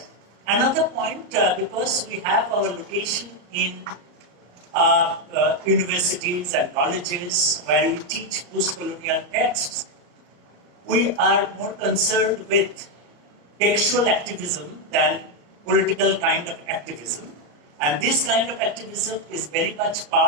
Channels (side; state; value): left; late; 34 ms